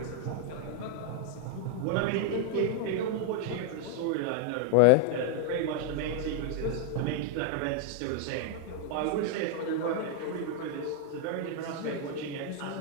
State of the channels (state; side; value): different; both; correlation 0.00